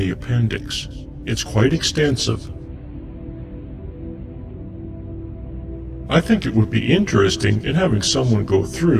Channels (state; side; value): identical; both; correlation 1.00